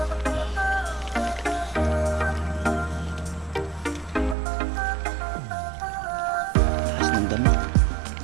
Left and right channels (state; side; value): drops out; left; at 4.4 s